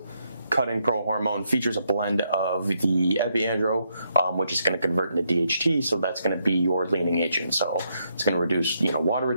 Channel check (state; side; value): inverted; both; correlation -0.77